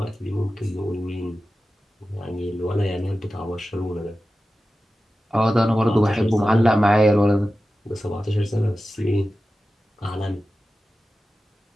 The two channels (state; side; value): normal; both; correlation 0.94